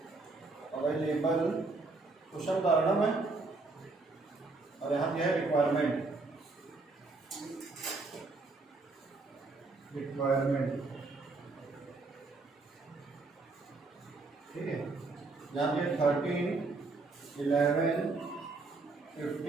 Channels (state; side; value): quieter; left; 3.6 dB